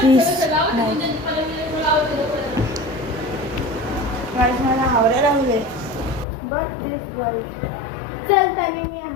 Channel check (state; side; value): drops out; right; at 6.2 s